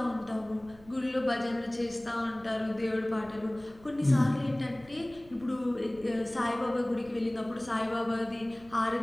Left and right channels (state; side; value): noise; right; rumble, 24 dB below the sound